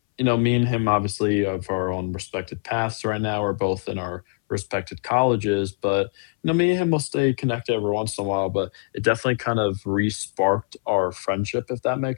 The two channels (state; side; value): silent; right; 63 dB below the other